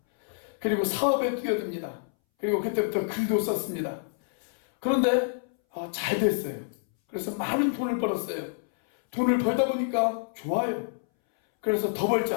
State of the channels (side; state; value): right; silent; 60 dB below the other